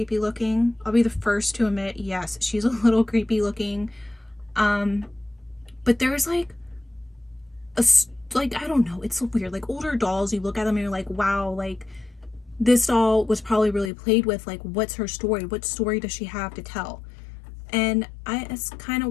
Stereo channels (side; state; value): right; drops out; at 13.9 s